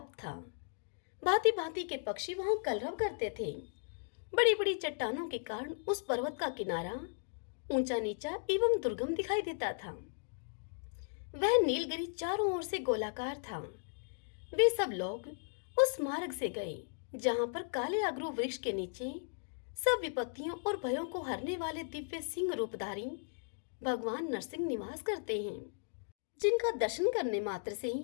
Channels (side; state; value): right; silent; digital silence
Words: था। भांति भांति के पक्षी वहां कलरव करते थे। बड़ी बड़ी चट्टानों के कारण उस पर्वत का किनारा ऊंचा नीचा एवं दुर्गम दिखाई देता था। वह नीलगिरी चारों ओर से गोलाकार था। वे सब लोग उस मार्ग से गए जहां पर काले अगरू वृक्ष के नीचे सब विपत्तियों और भयों को हरने वाले दिव्य सिंह रूपधारी भगवान नरसिंह निवास करते हैं, जिनका दर्शन करने मात्र से